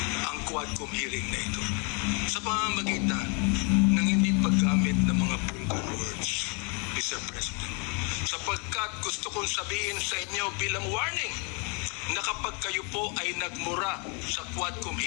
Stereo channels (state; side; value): quieter; right; 34.6 dB